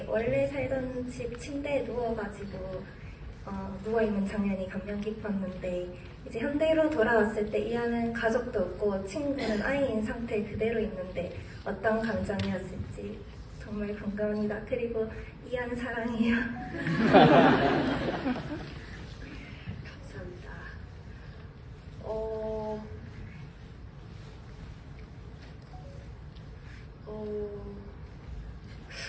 원래 살던 집 침대에 누워가지고 누워있는 장면이 감명 깊었는데 이제 현대로 돌아왔을 때 이안은 가족도 없고 친구는 아이인 상태 그대로 있는데 어떤 감정이었을지 정말 궁금합니다. 그리고 이안 사랑해요. 감사합니다.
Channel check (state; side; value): identical; both; correlation 1.00